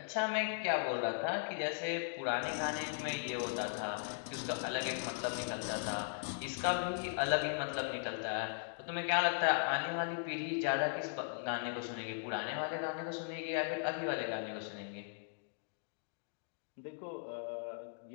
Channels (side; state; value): right; silent; digital silence